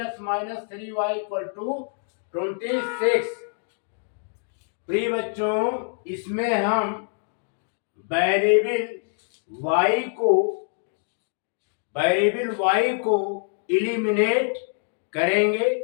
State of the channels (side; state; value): right; silent; digital silence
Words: minus 3y equal to 26। प्रिय बच्चों, इसमें हम वेरिएबल y को इलिमिनेट करेंगे।